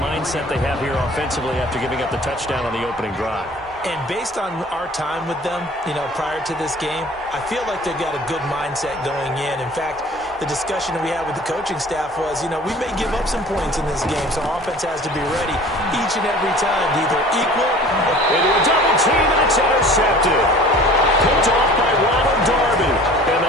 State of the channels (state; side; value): normal; both; correlation 0.46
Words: they have here offensively after giving up the touchdown on the opening drive. And based on our time with them, prior to this game, I feel like they've got a good mindset going in. In fact, the discussion that we had with the coaching staff was, we may give up some points in this game, so our offense has to be ready each and every time to either equal into a double team, and it's intercepted. Picked off by Ronald Darby. And